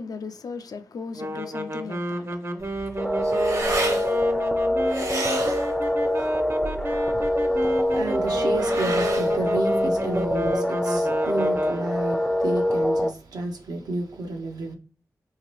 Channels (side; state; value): both; normal; correlation 0.88